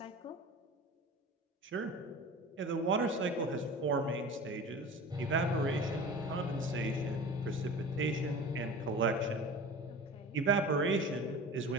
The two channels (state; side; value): normal; both; correlation 0.36